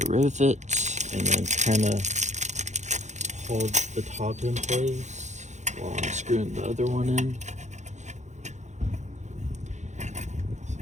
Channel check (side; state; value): left; late; 0.34 ms